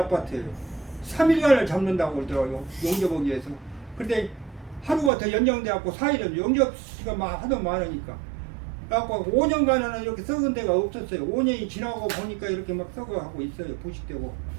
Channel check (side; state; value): left; drops out; at 5.1 s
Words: 3일간을 잡는다고 그러더라고요. 용접하기 위해서. 근데 하루가 더 연장돼갖고 4일은 용접시가 하도 많으니까. 그래갖고 5년간은 이렇게 썩은 데가 없었어요. 5년이 지나고 보니까 이렇게 막 썩어가고 있어요. 부식되고.